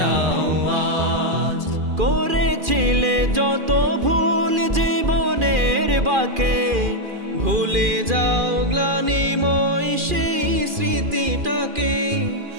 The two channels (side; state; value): left; late; 2.4 ms